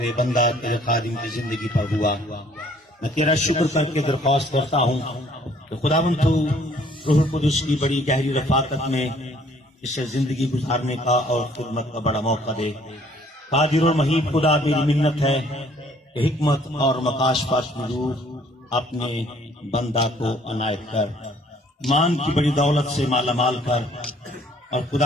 بندہ تیرے خادم کی زندگی پر ہوا۔ میں تیرا شکر کر کے درخواست کرتا ہوں کہ تو خداوند تو روح القدس کی بڑی گہری رفاقت میں اسے زندگی گزارنے کا اور خدمت کا بڑا موقع دے۔ قادر اور محیط خدا، میری منت ہے کہ حکمت اور مکاشفت کی روح اپنے بندہ کو عنایت کر، ایمان کی بڑی دولت سے مالا مال کر، اور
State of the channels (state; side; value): normal; both; correlation 0.60